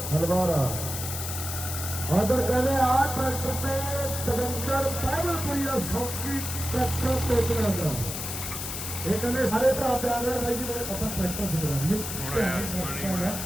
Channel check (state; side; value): noise; left; hiss, 5 dB below the sound